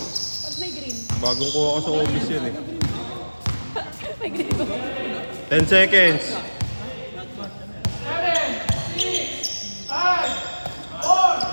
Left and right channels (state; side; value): inverted; both; correlation -1.00